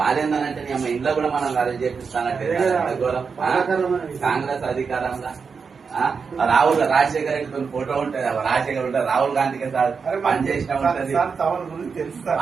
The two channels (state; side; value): quieter; left; 5.5 dB